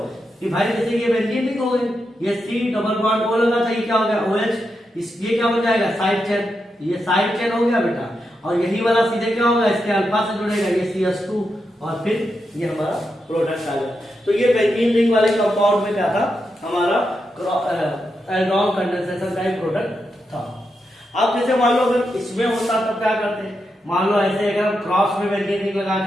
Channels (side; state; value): both; normal; correlation 0.86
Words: कि भाई जैसे ये बेंजीन रिंग हो गई, ये C डबल बॉन्ड O लगा था, ये क्या हो गया OH, ये क्या बन जाएगा साइड चेन, ये साइड चेन हो गया बेटा। और यही वाला सीधे क्या होगा इसके अल्फा से जुड़ेगा, ये CH2, और फिर ये हमारा प्रोडक्ट आ गया। तो ये बेंजीन रिंग वाले कंपाउंड में क्या था, हमारा एल्डोल कंडेंसेशन का एक प्रोडक्ट था। अब जैसे मान लो अगर इसमें होता तब क्या करते हैं, मान लो ऐसे अगर हम क्रॉस में बेंजीन रिंग लगा